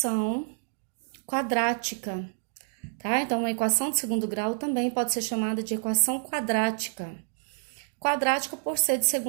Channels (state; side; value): silent; left; digital silence